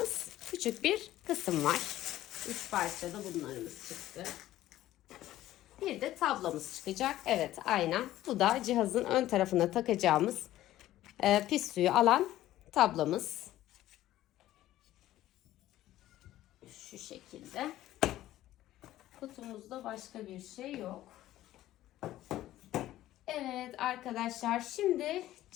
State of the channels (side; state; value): right; quieter; 14.4 dB